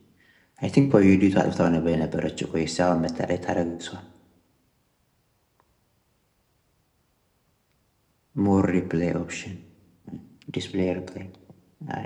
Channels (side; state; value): both; identical; correlation 1.00